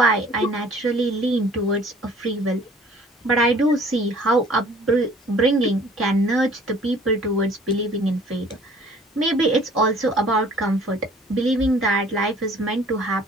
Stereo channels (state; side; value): normal; both; correlation 0.53